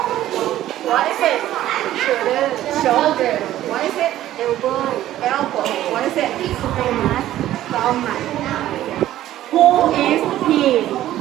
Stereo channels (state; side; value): quieter; left; 13.5 dB